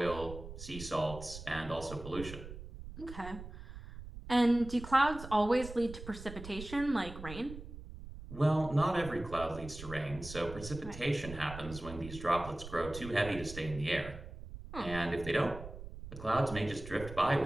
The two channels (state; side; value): noise; right; rumble, 12 dB below the sound